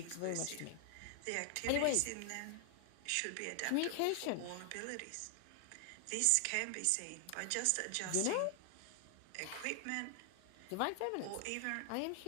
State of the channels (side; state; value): both; different; correlation 0.00